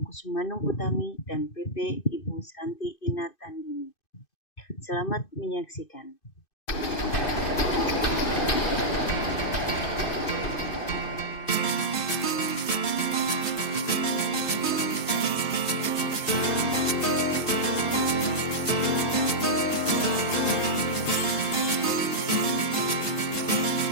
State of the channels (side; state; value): right; late; 2.6 ms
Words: Kusumanung Utami dan PP Ibu Sranti Inatandini. Selamat menyaksikan.